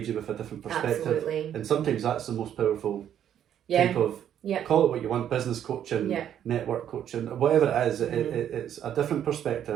you with a different perspective. Absolutely. And sometimes that's the most powerful type of... Call it what you want, business coaching, network coaching, whatever it is, it's a different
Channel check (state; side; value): quieter; left; 10.0 dB